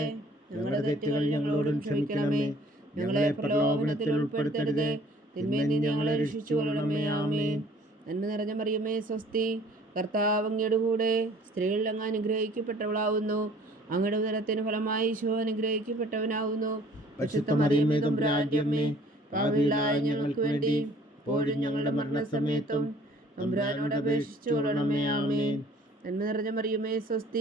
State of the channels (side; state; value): both; normal; correlation 0.54